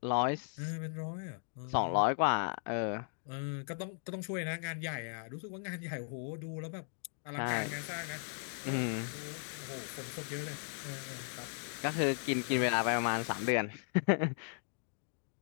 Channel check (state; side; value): silent; right; 53 dB below the other